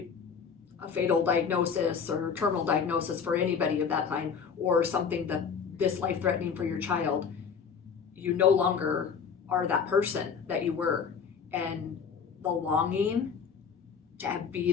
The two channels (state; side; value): quieter; right; 6.4 dB